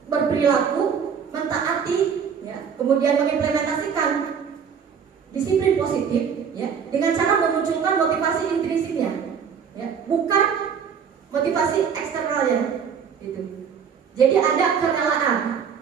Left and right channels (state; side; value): quieter; left; 7.0 dB